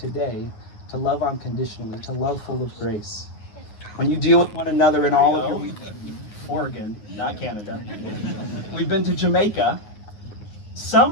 to love unconditionally, to love full of grace. When you deal with one another in all of your... Oregon, not Canada. We've been to Jamaica.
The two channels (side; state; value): right; late; 9.5 ms